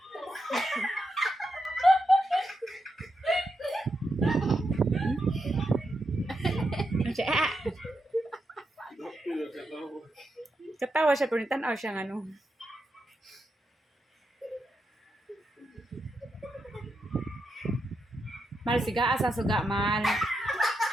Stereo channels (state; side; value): normal; both; correlation 0.85